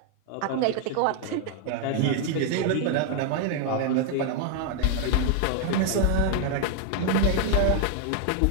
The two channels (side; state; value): both; different; correlation 0.00